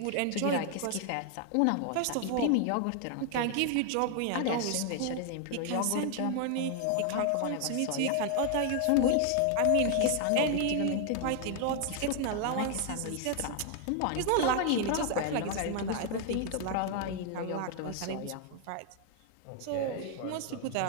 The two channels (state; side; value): different; both; correlation 0.00